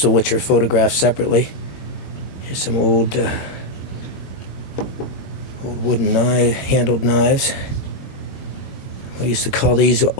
of which are photographed separately. Here's some old wooden handled knives. We used to call these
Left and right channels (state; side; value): late; right; 21 ms